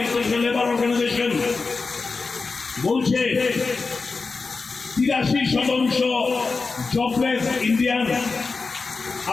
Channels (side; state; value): right; quieter; 4.2 dB